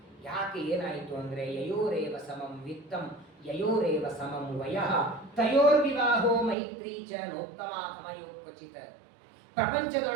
ಯಾಕೆ, ಏನಾಯಿತು ಅಂದ್ರೆ ಯಯೋರೇವ ಸಮಂ ವಿತ್ತಂ ಯಯೋರೇವ ಸಮಂ ವಯಃ ತಯೋರ್ವಿವಾಹೋ ಮೈತ್ರಿ ಚ ನೋತ್ತಮಾಧಮಯೋ ಕ್ವಚಿತ್.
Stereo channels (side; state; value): left; drops out; at 6.6 s